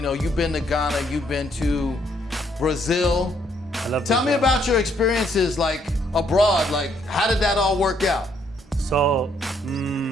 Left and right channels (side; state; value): both; normal; correlation 0.70